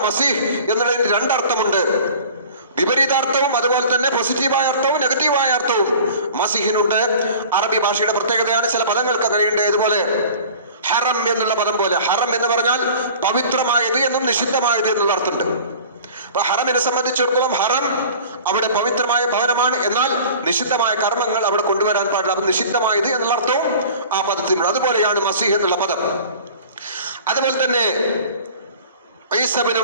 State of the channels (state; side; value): inverted; both; correlation -0.42